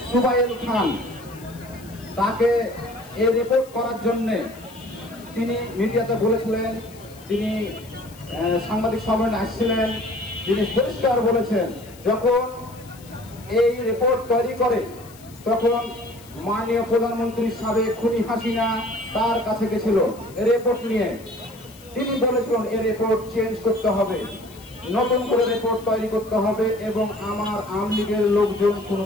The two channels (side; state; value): left; noise; hiss, 23 dB below the sound